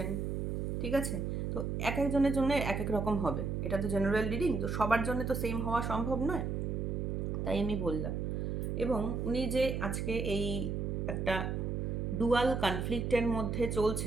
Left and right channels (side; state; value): right; noise; hum, 1 dB below the sound